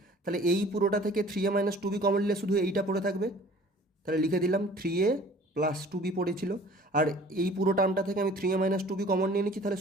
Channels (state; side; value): normal; both; correlation 0.49